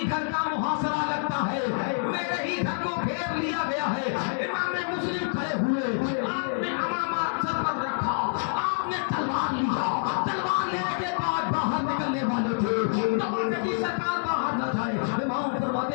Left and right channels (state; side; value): silent; right; 60 dB below the other